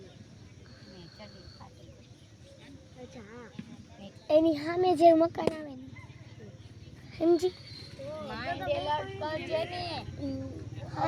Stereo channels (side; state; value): both; identical; correlation 1.00